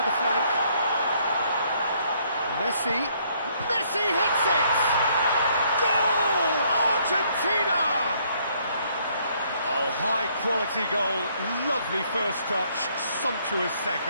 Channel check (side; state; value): both; inverted; correlation -0.67